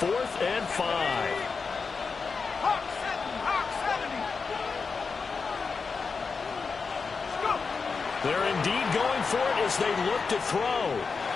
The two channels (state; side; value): quieter; right; 4.9 dB